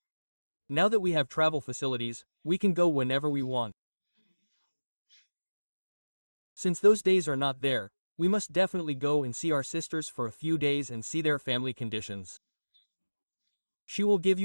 Now that we have travel facilities, we can go whenever we want. Since those days are not there, we must definitely go and see our sisters for a few days and see their family conditions. She will give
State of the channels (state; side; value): inverted; both; correlation -1.00